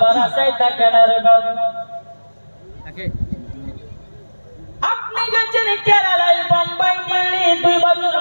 আশায় থাকে না রে বাবা। আপনি গেছেন কেরালায়, বোম্বাই, দিল্লি, 2 বছর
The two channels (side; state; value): both; inverted; correlation -1.00